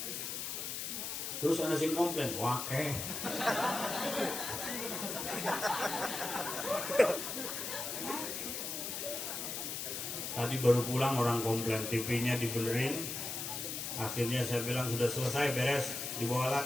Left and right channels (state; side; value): noise; left; hiss, 4 dB below the sound